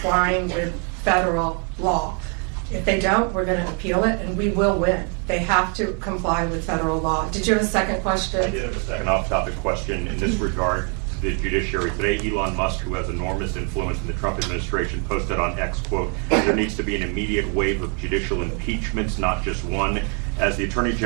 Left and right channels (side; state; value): left; quieter; 37.8 dB